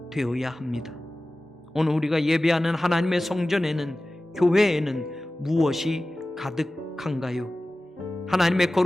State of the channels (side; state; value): both; normal; correlation 0.96